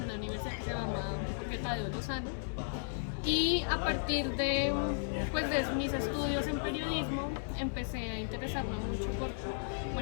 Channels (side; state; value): right; silent; digital silence